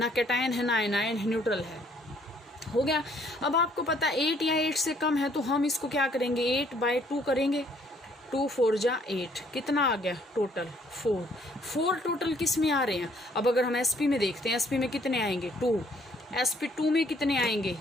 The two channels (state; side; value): normal; both; correlation 0.64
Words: कैटायन है ना एनायन है, न्यूट्रल है, हो गया। अब आपको पता 8 या 8 से कम है तो हम इसको क्या करेंगे, 8/2 करेंगे। 2 4 जा 8, कितना आ गया टोटल 4 टोटल किस में आ रहे हैं। अब अगर हम SP में देखते हैं, SP में कितने आएंगे 2, SP2 में कितने आएंगे